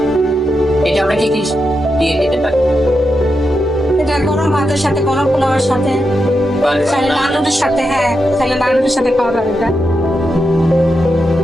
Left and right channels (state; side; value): normal; both; correlation 0.86